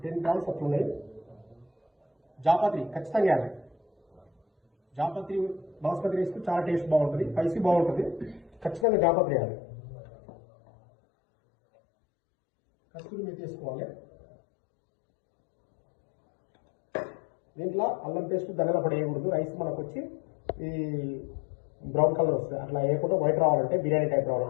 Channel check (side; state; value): right; drops out; at 8.8 s